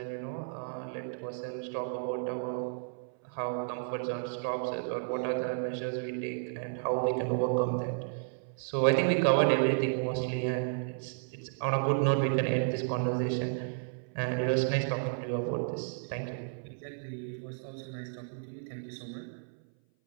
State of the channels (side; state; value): left; silent; 56 dB below the other